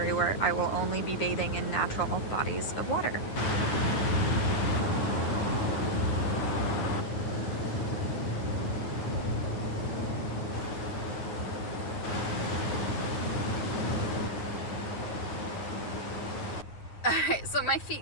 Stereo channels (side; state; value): right; late; 9.5 ms